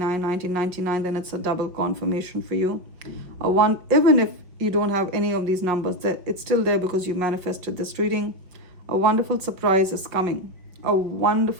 1999, then it's a double confirmation for you. Even if you don't have any of these numbers, it's still there because you manifested this reading. A wonderful surprise is coming. A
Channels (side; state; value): left; late; 5.5 ms